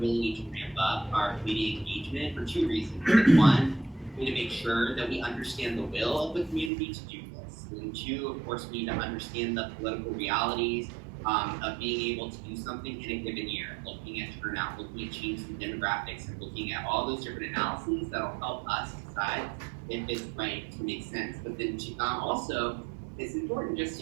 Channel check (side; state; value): left; drops out; at 6.7 s